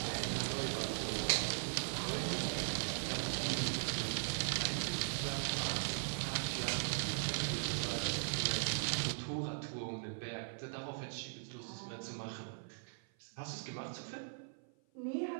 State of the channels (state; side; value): silent; left; 51 dB below the other